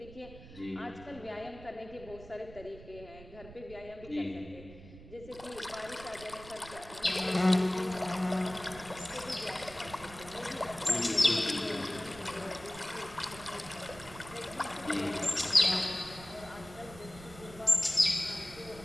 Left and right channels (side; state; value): right; noise; rumble, 17 dB below the sound